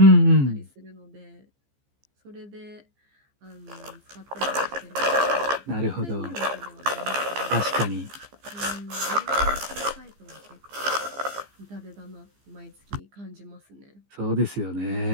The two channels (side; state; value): left; late; 15 ms